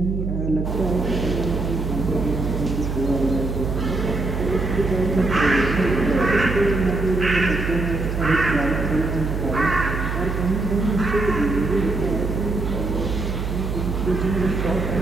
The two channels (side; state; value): right; noise; hum, 3 dB below the sound